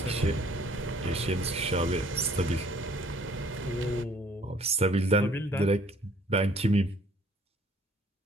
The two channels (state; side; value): normal; both; correlation 0.58